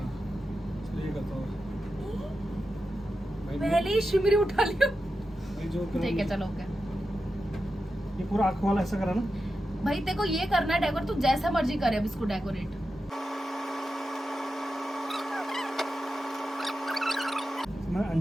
ये करता हूँ भाई। पहले ही शिमरी उठा लियो। भाई जो कलर- ठीक है चलो ओके। ये पूरा आँख वाला ऐसा करा ना। भाई तेरे को ये करना है डेकोरेट, तू जैसा मर्जी करे अब इसको डेकोरेट। मैं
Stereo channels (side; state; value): both; normal; correlation 0.90